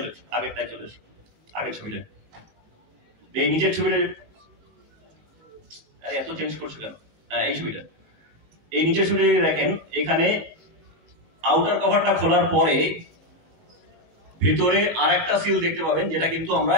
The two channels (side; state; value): left; late; 19 ms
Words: ছবিতে এই নিচের ছবিতে এত চেঞ্জ করছো কেন, এই ছবিটা, এই নিচের ছবিটা যদি দেখেন এখানে আউটার কভারটা খোলার পরে ভিতরে আরেকটা সিল দেখতে পাবেন, যেটা কিন্তু আমরা